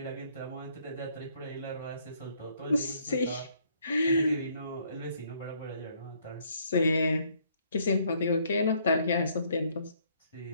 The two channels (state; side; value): inverted; both; correlation -0.66